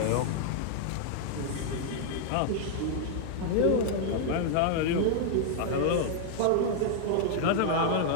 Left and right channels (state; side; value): different; both; correlation 0.00